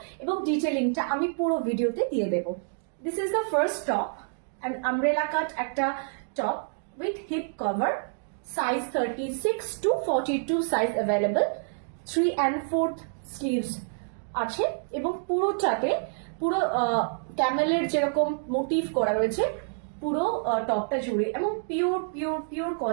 এবং ডিটেলিংটা আমি পুরো ভিডিওতে দিয়ে দেব। This is the first top, and umbrella cut একটা top with hip cover, size 36 to 42 size available, 3 and 4th sleeves আছে এবং পুরোটাতে পুরো ক্যামেলের যেরকম মোটিভ করা রয়েছে পুরো টপটা জুড়ে, এবং পিওর পিওর পিওর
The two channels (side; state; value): left; silent; 59 dB below the other